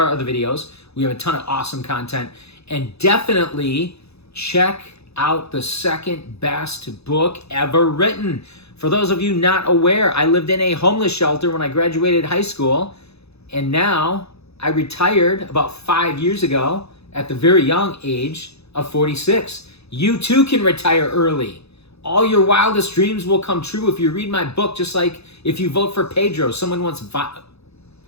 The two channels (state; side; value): late; right; 0.79 ms